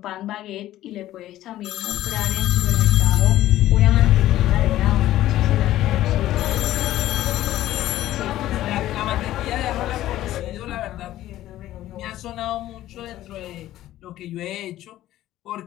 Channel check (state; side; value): quieter; right; 14.2 dB